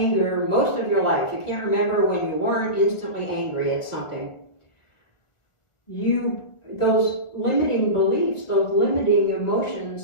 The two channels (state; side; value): late; right; 1.2 ms